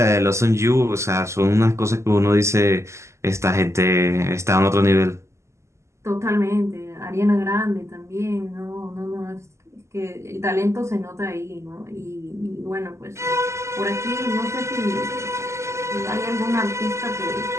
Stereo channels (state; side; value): late; left; 0.13 ms